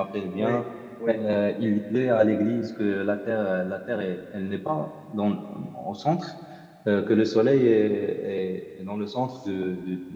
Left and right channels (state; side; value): identical; both; correlation 1.00